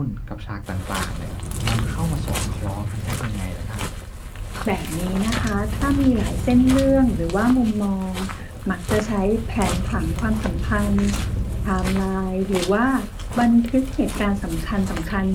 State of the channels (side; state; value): both; identical; correlation 1.00